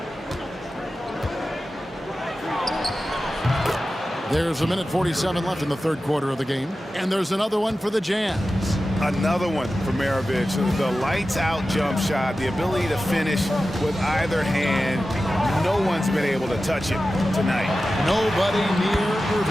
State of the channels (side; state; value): both; normal; correlation 0.94